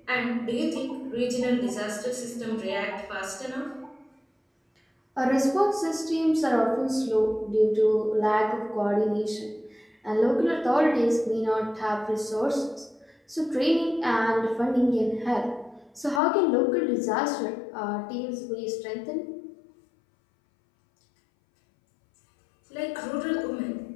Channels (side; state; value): right; drops out; at 16.2 s